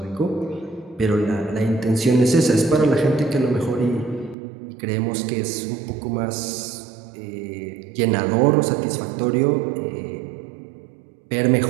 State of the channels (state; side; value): drops out; left; at 4.4 s